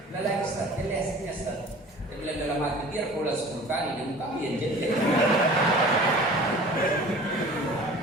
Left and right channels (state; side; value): normal; both; correlation 0.44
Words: bulan lagi Ustaz, jelasnya Ustaz. Dia bilang dalam hati biar pola 10 kali dan kami yang jadi.